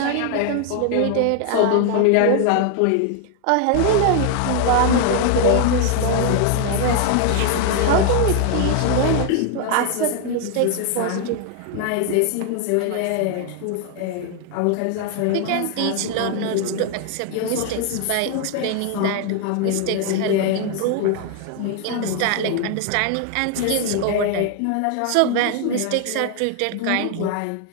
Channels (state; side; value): different; both; correlation 0.00